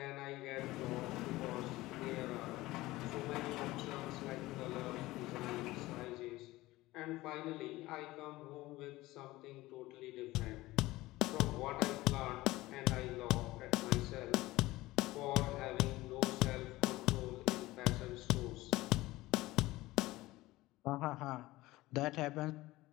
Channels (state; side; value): quieter; right; 18.5 dB